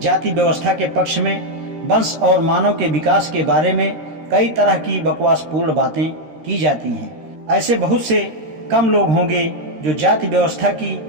जाति व्यवस्था के पक्ष में वंश और मानव के विकास के बारे में कई तरह की बकवासपूर्ण बातें की जाती हैं। ऐसे बहुत से कम लोग होंगे जो जाति व्यवस्था की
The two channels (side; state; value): left; late; 13 ms